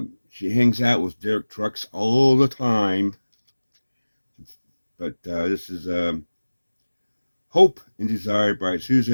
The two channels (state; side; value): inverted; both; correlation -1.00